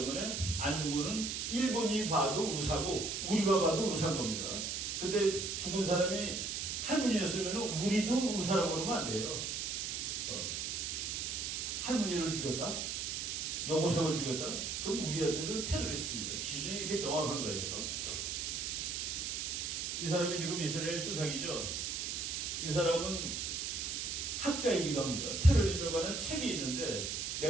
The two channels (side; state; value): right; noise; hiss, 2 dB below the sound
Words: 안중근은 일본이 봐도 의사고 우리가 봐도 의사인 겁니다. 근데 죽은 사람이 할머니였으면 우리도 의사라고 그러면 안 돼요. 할머니를 죽였다? 여고생을 죽였다? 그럼 우리한테도 테러리스트입니다. 기준이 이렇게 명확한 거예요. 이 사람이 지금 이스라엘 수상이죠. 이 사람은 학자이기도 합니다. 테러리즘에 관한 책이 있는데